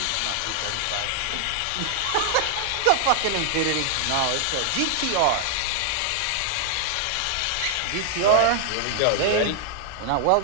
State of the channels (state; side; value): different; both; correlation 0.00